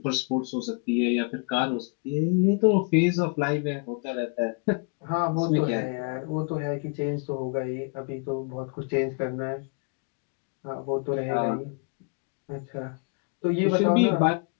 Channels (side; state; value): right; quieter; 34.8 dB